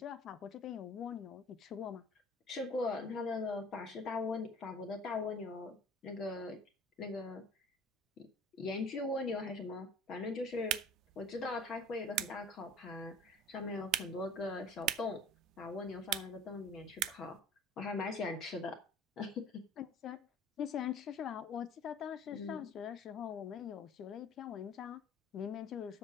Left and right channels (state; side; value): normal; both; correlation 0.46